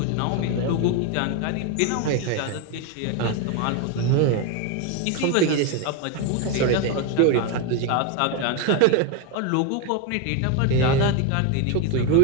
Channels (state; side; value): different; both; correlation 0.02